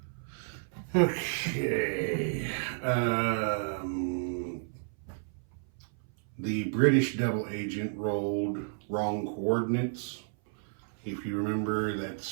Okay. The British double agent rolled wrong coordinates. If you remember,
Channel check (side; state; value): left; silent; 57 dB below the other